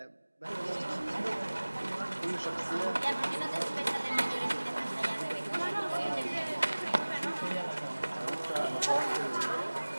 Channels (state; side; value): inverted; both; correlation -1.00